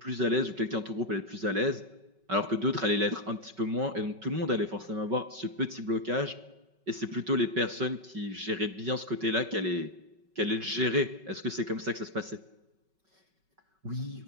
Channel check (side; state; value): left; late; 5.3 ms